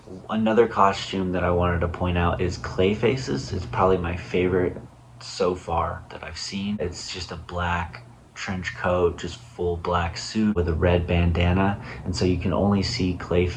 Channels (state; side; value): identical; both; correlation 1.00